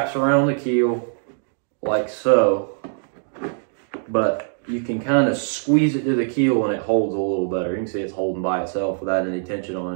around the keel like so. But you can kind of squeeze it to the keel and it holds a little better. You can see it's holding by itself without any tension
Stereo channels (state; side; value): silent; left; digital silence